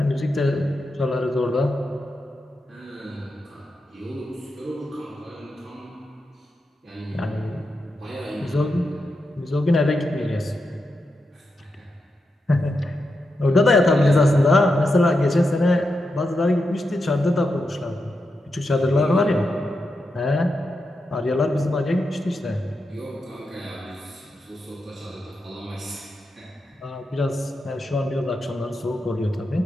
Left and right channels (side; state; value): both; normal; correlation 0.87